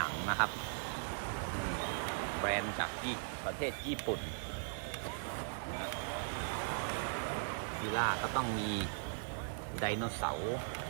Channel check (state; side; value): silent; left; digital silence